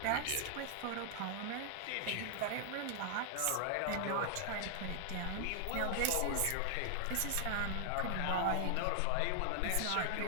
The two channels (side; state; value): both; different; correlation 0.00